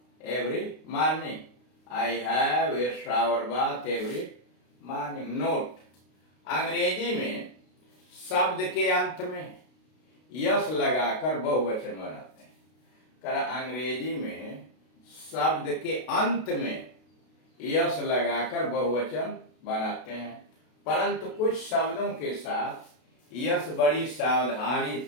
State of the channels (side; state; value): right; late; 32 ms